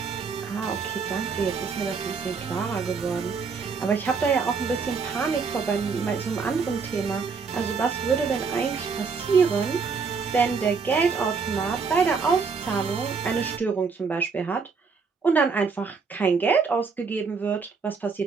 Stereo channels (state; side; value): quieter; left; 5.1 dB